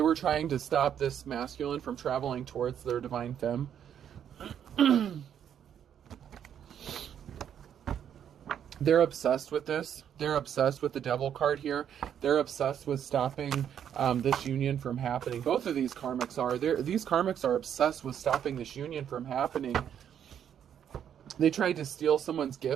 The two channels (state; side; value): quieter; left; 9.1 dB